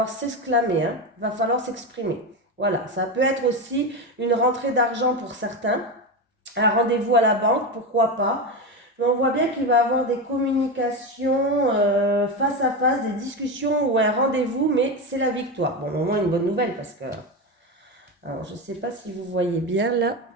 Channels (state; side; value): normal; both; correlation 0.17